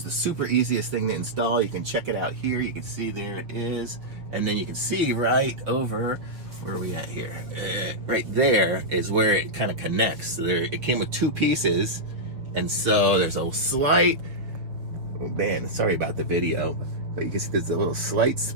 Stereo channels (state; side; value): late; left; 6.5 ms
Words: the super easiest thing to install. You can check it out here. You can see there it is, and then you can see right over, where are we at here? Right there is where it kind of connects. So there, it came with two pieces, and so there's a slight, oh man, sorry about the video, but you can see there's a little slight